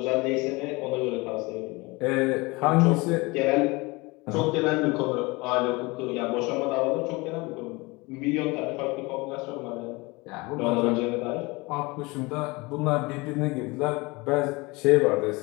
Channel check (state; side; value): quieter; right; 24.5 dB